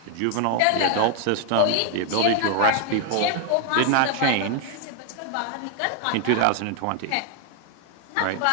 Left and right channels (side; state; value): both; different; correlation 0.00